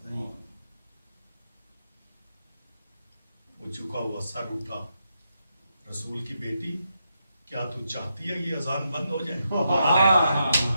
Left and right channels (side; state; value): both; inverted; correlation -0.83